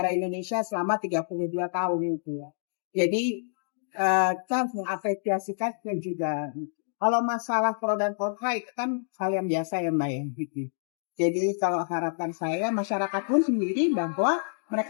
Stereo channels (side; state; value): right; silent; digital silence